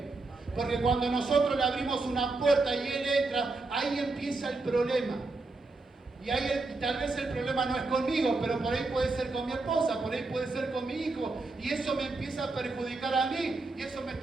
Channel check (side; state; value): left; quieter; 3.5 dB